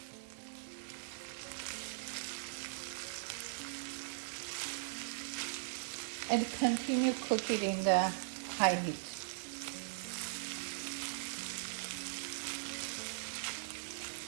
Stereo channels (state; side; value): silent; left; digital silence